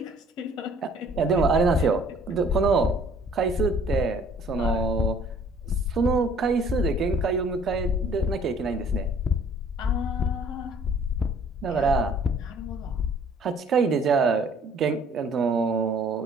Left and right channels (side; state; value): both; normal; correlation 0.56